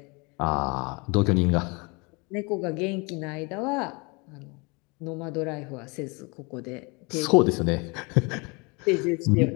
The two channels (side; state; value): right; quieter; 29.1 dB